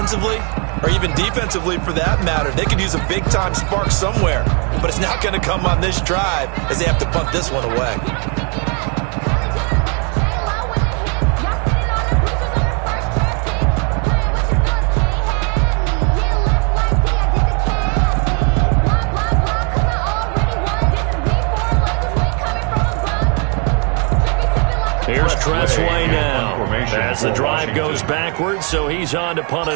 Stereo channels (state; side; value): quieter; left; 35.9 dB